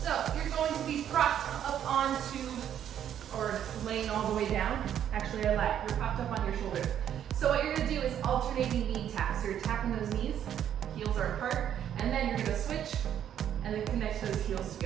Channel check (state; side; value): quieter; left; 9.9 dB